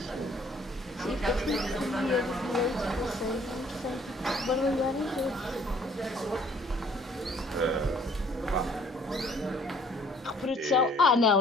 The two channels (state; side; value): normal; both; correlation 0.59